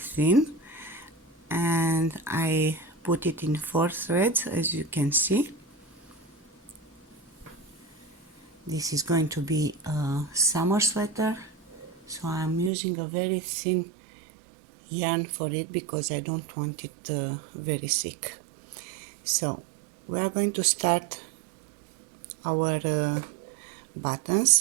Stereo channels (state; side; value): drops out; left; at 12.7 s